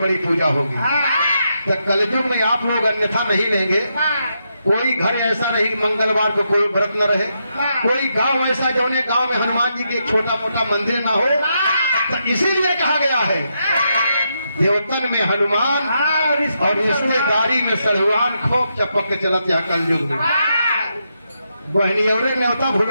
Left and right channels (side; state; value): both; inverted; correlation -0.82